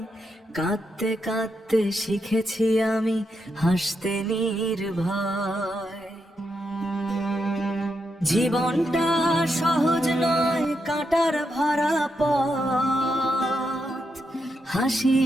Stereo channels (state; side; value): normal; both; correlation 0.83